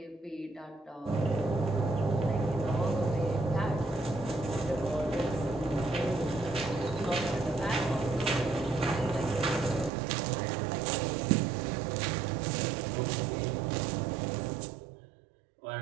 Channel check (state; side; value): drops out; left; at 9.9 s